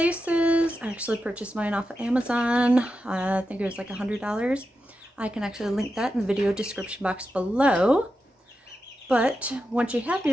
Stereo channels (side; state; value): both; normal; correlation 0.89